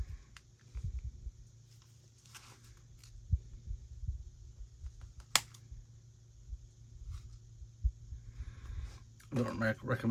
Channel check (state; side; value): identical; both; correlation 1.00